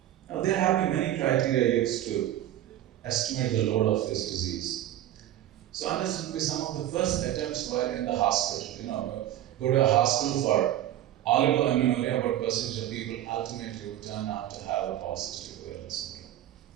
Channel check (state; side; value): quieter; left; 12.7 dB